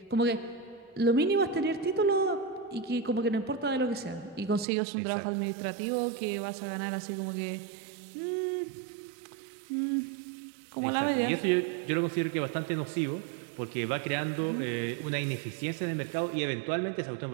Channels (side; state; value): left; drops out; at 4.7 s